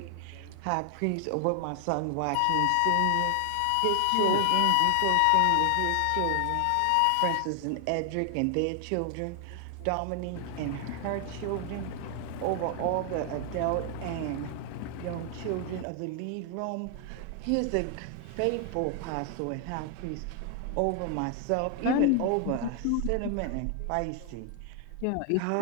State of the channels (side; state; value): both; different; correlation 0.00